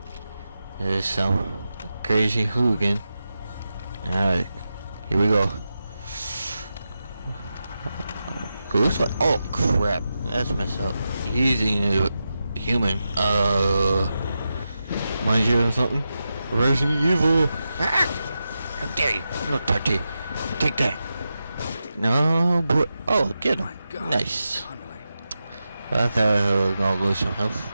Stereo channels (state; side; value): inverted; both; correlation -0.90